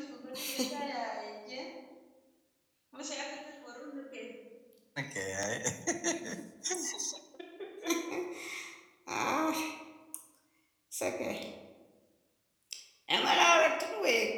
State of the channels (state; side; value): identical; both; correlation 1.00